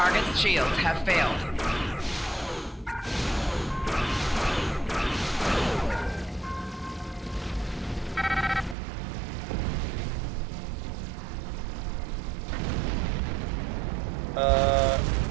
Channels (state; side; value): drops out; left; at 8.8 s